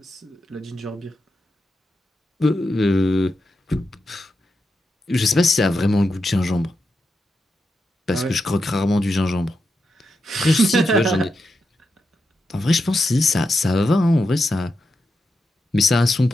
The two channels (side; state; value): both; normal; correlation 0.87